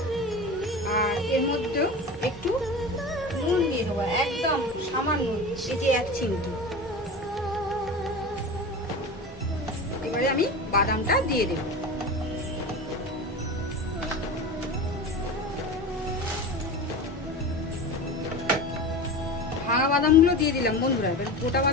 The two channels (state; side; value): normal; both; correlation 0.30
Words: আর এর মধ্যেও একটু নুন দিয়ে দেবো, একদম সামান্য, এই যে 1 চিমটি। এবারে আমি বাদামটা দিয়ে দেব। ভাঙা বাদামগুলো দিয়ে দিলাম বন্ধুরা। এবার গোটা